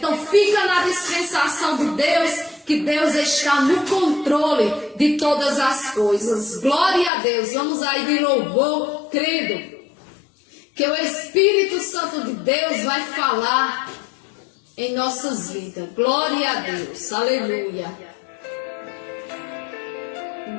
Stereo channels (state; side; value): drops out; right; at 7.1 s